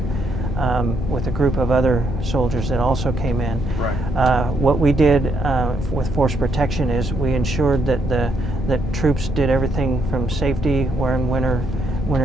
with a group of other soldiers that also came in. Right. What we did with force protection is we ensured that troops did everything from safety, wearing winter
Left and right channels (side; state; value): both; normal; correlation 0.74